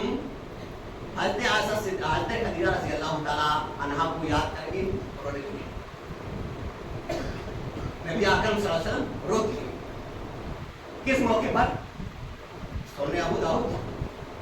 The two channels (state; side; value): identical; both; correlation 1.00